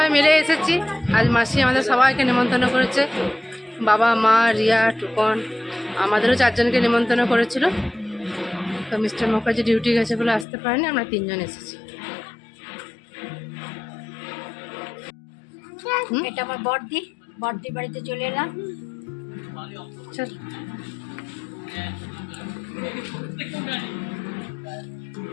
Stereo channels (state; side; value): drops out; right; at 10.5 s